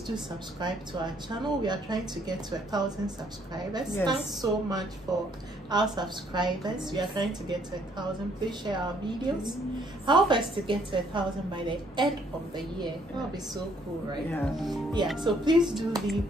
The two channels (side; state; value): both; normal; correlation 0.66